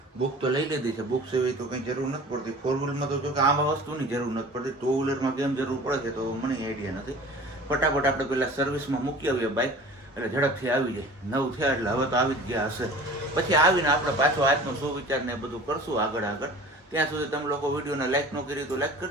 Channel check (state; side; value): normal; both; correlation 0.43